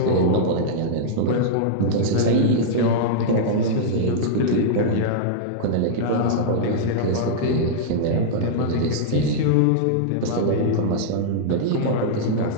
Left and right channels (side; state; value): both; different; correlation -0.02